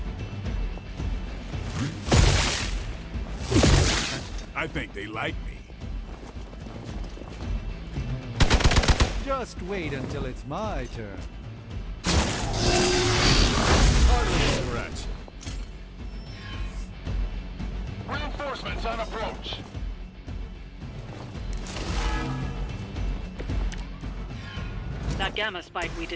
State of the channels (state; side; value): identical; both; correlation 1.00